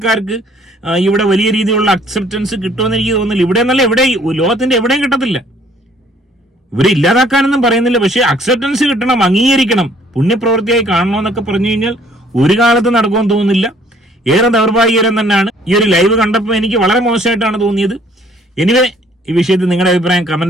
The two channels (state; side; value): normal; both; correlation 0.60